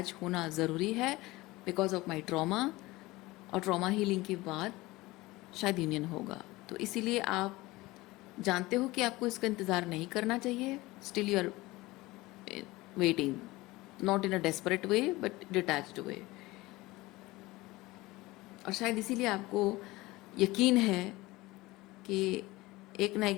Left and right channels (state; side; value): quieter; right; 20.2 dB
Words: होना ज़रूरी है बिकॉज ऑफ माई ट्रॉमा, और ट्रॉमा हीलिंग के बाद शायद यूनियन होगा। तो इसीलिए आप जानते हो कि आपको इसका इंतज़ार नहीं करना चाहिए, still you are waiting, not in a desperate way but detached way. और शायद इसीलिए आपको यकीन है कि एक ना